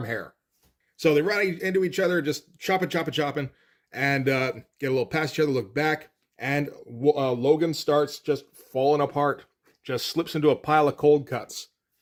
hair. So they run into each other, just chopping, and get a little past each other, look back, and Logan starts just falling apart, just slips into a pile of cold cuts.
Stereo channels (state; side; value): identical; both; correlation 1.00